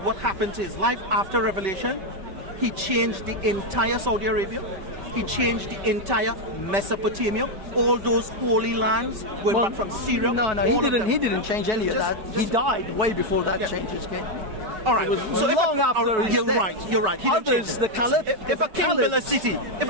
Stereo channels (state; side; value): late; left; 5.2 ms